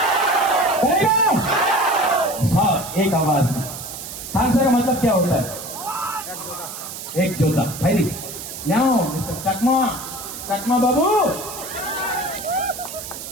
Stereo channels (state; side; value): noise; right; hiss, 10 dB below the sound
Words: साहब एक आवाज में। थानसा का मतलब क्या होता है? एक जोधा भाई मिस्टर चकमा बाबू,